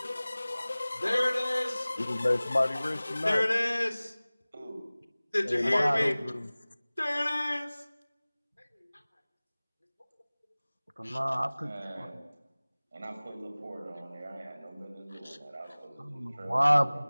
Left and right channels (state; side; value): inverted; both; correlation -0.99